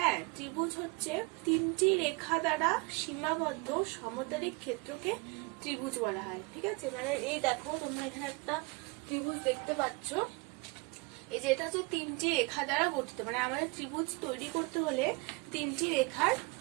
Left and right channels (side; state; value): left; quieter; 27.9 dB